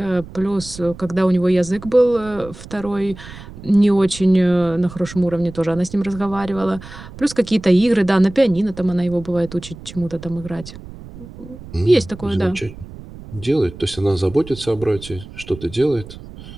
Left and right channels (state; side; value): noise; right; rumble, 15 dB below the sound